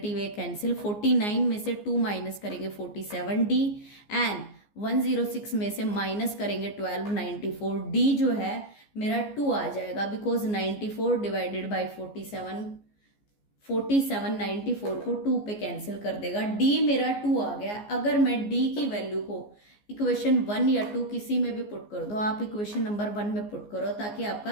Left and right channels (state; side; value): late; right; 14 ms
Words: ए कैंसिल, 49 में से 2 माइनस करेंगे 47 डी, एंड 106 में से माइनस करेंगे 12 94 डी जो है मेरा 2 आ जाएगा, बिकॉज 94 डिवाइडेड बाई 47 94 को 2 पे कैंसिल कर देगा, डी मेरा 2 आ गया। अगर मैं डी की वैल्यू को इक्वेशन 1 या 2 किसी में भी पुट कर दो, आप इक्वेशन नंबर 1 में पुट करो ताकि आपका